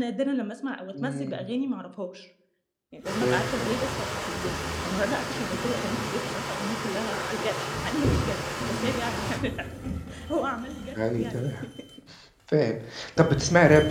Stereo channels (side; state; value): both; identical; correlation 1.00